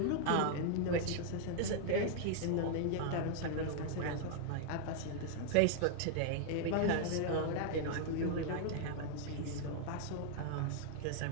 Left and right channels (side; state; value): both; different; correlation 0.00